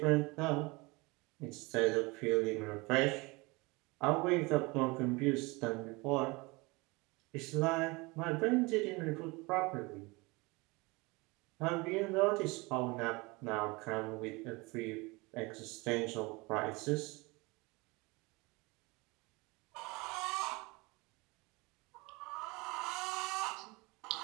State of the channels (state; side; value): quieter; left; 25.1 dB